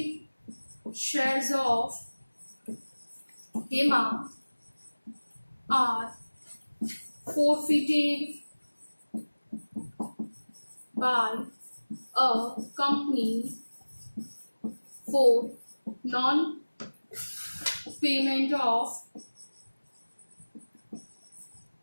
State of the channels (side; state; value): both; inverted; correlation -1.00